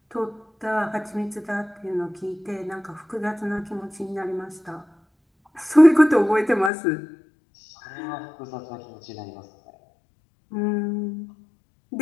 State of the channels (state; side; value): drops out; right; at 6.7 s